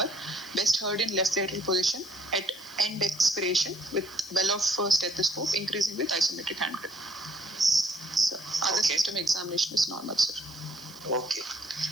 best heard in left lateral position at end expiration with well of stethoscope, increasing with isometric hand grip. So other system examination is normal, sir. Okay.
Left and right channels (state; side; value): noise; right; hiss, 21 dB below the sound